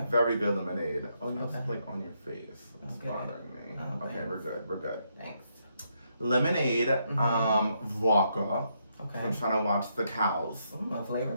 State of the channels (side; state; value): both; inverted; correlation -0.77